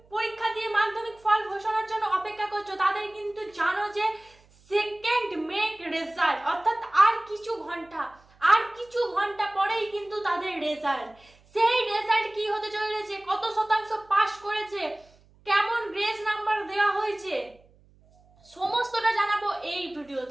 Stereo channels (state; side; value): noise; right; hum, 30 dB below the sound